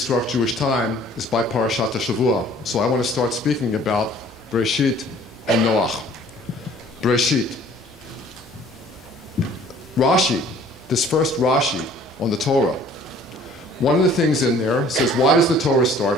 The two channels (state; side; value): normal; both; correlation 0.53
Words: Jewish time is by Parashat HaShavua. So I want to start speaking about Bereshit and Noach. Bereshit. Rashi, this first Rashi on the Torah, one of the things in there says, why does the Torah